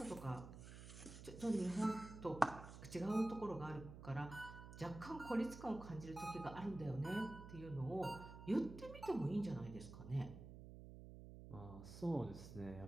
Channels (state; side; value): noise; right; hum, 12 dB below the sound